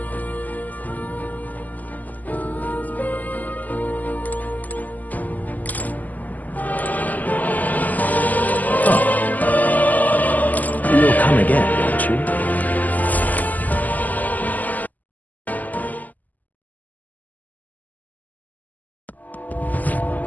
You'll come again, won't you?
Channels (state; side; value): late; right; 0.081 ms